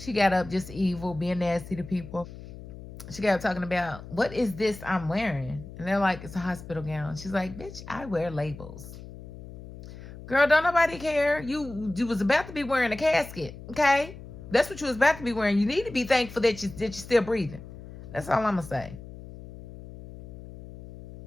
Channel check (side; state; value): left; noise; hum, 14 dB below the sound